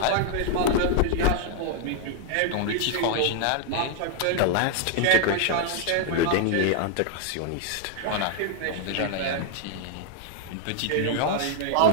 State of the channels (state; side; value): different; both; correlation 0.00